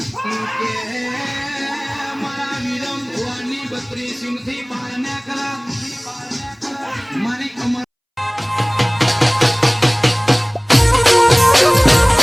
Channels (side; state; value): both; identical; correlation 1.00